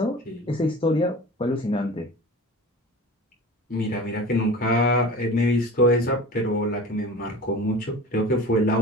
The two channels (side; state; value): both; normal; correlation 0.37